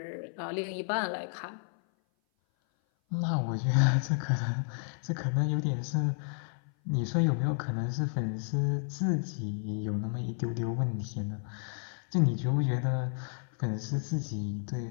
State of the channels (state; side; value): silent; right; 56 dB below the other